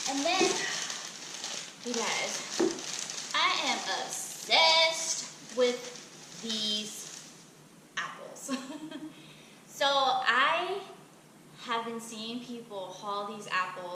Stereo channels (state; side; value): identical; both; correlation 1.00